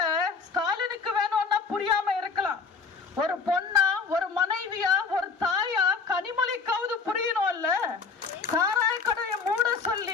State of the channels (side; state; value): right; quieter; 5.0 dB